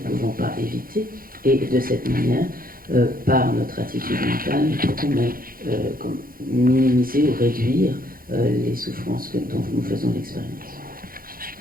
pas éviter. Et de cette manière, par notre attitude mentale, nous pouvons minimiser ou réduire les souffrances dont nous faisons l'expérience.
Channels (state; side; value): late; left; 0.42 ms